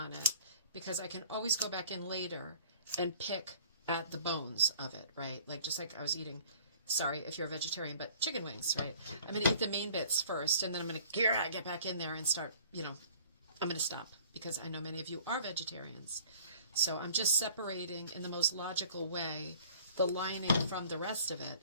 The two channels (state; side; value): inverted; both; correlation -0.53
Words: it, because I can always go back in later and pick at the bones of it, right? Like just like I was eating, sorry if you're a vegetarian, but chicken wings, right? I'm going to eat the main bits first, and then I'm going to get back in there and start, I'm going to stop, because I know many of you are vegetarians. So I'm just separating in the most logical way the lining from the rest of it.